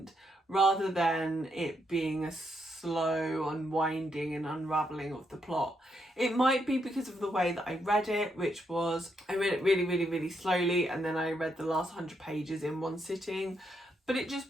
rather than it being a slow unwinding and unravelling of the plot. It might be because of the way that I read it, which was, I read it really slowly, and then I read the last 100 pages in one sitting, but it just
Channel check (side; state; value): both; normal; correlation 0.78